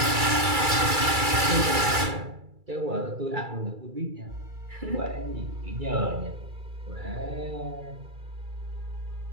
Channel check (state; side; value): late; left; 2.3 ms